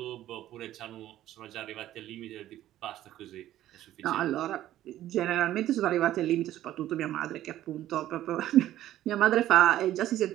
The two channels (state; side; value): quieter; left; 13.3 dB